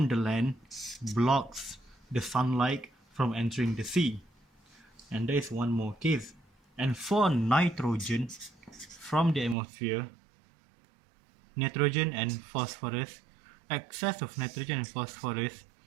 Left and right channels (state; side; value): drops out; left; at 9.6 s